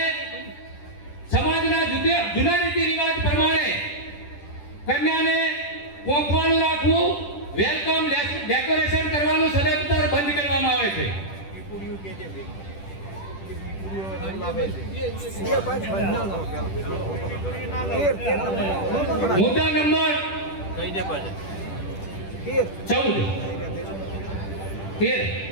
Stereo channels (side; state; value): right; late; 10 ms